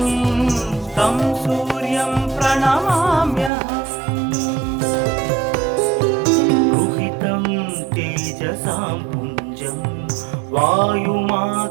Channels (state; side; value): drops out; left; at 3.5 s